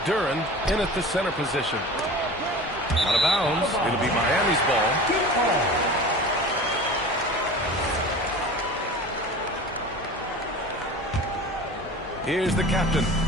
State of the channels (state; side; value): normal; both; correlation 0.36